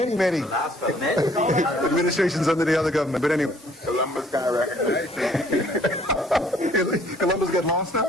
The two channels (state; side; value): normal; both; correlation 0.60